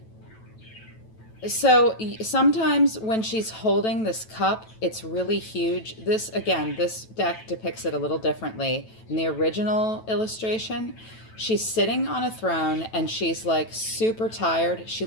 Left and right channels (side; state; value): right; late; 9.1 ms